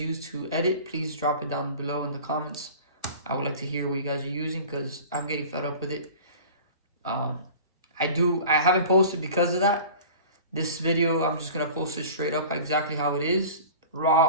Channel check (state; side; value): inverted; both; correlation -0.39